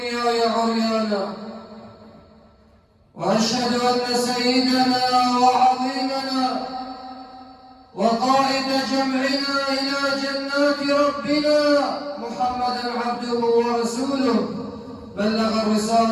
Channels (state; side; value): identical; both; correlation 1.00